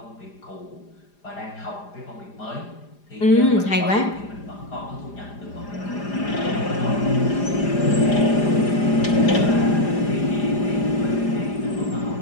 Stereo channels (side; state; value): right; late; 4.9 ms